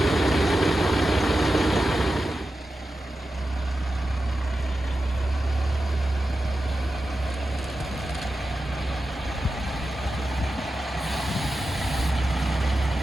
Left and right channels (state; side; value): normal; both; correlation 0.92